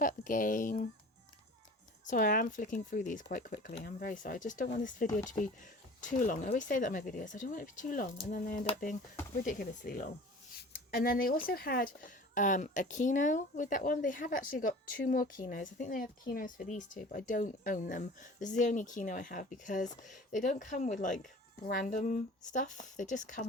the game. Sorry, I am flicking through these quite quickly. I'm very sorry. I just don't want this video to be too long. I always say that in my videos. I don't want it to be too long, and then they end up being ridiculously long. And then they also had a keynote with that one. They have actually got 2 more keynotes. I think they have keynotes for these 2, but I don't own them. This is the only keynote I have, because they don't come with like random stuff. They just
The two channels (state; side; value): normal; both; correlation 0.42